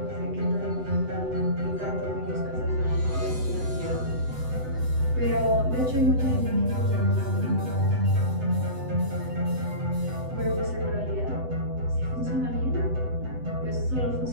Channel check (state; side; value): late; left; 7.9 ms